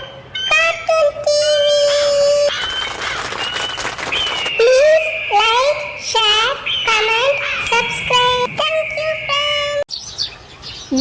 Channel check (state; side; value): identical; both; correlation 1.00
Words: Cartoon TV. Please like, share, comment, subscribe. Thank you friends.